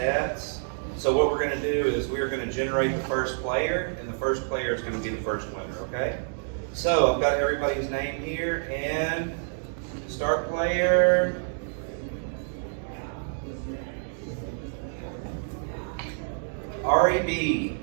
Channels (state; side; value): silent; left; digital silence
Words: So what we're going to do is we're going to generate the first player, and the first player is going to be the first winner, okay? So I've got everybody's name here, and start player, Roy B.